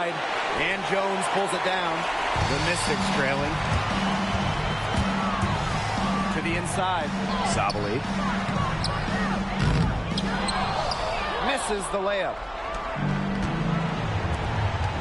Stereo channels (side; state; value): both; identical; correlation 1.00